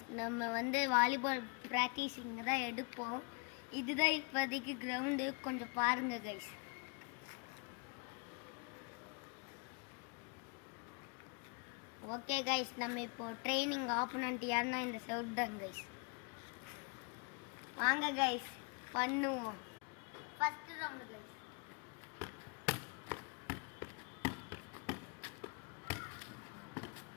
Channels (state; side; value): quieter; right; 34.8 dB